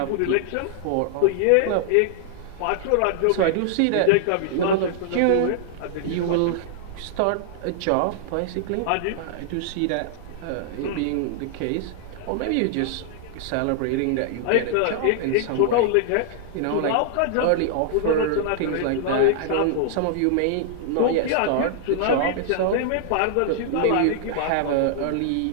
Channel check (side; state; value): both; different; correlation -0.01